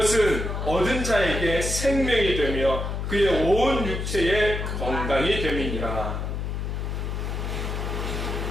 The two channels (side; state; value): left; noise; hum, 3 dB below the sound